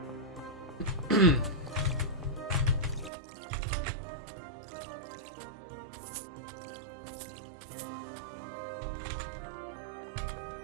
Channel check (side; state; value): left; drops out; at 3.1 s